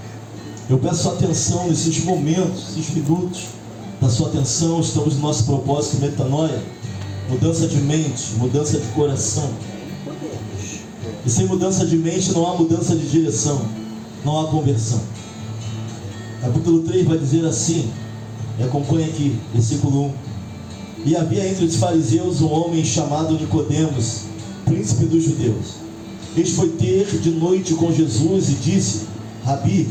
Eu peço sua atenção nesses momentos, esses minutos da sua atenção. Estamos no nosso propósito metanoia, mudança de mente, mudança de coração. E sem mudança de mente não há mudança de direção, não há conversão. Capítulo 3 vai dizer assim, e acompanha aqui, versículo 1. E havia entre os fariseus um homem chamado Nicodemos, príncipe dos judeus. Este foi ter de noite com Jesus e disse: Rabi,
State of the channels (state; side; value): identical; both; correlation 1.00